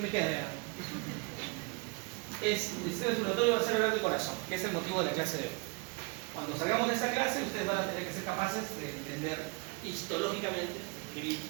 me queda? El sistema circulatorio va a ser hablar del corazón, que es el motivo de la clase de hoy. Cuando salgamos de esta clase, ustedes van a tener que ser capaces de entender histológicamente,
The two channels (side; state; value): left; quieter; 29.3 dB